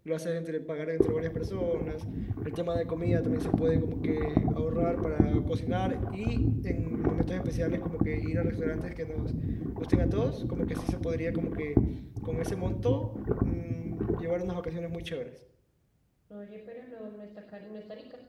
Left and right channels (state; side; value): identical; both; correlation 1.00